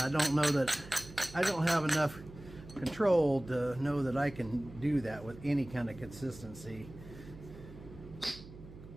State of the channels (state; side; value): noise; right; hum, 16 dB below the sound